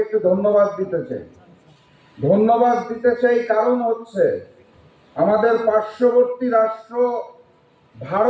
একটু ধন্যবাদ দিতে চাই। কারণ হচ্ছে আমাদের পার্শ্ববর্তী রাষ্ট্র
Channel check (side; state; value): both; identical; correlation 1.00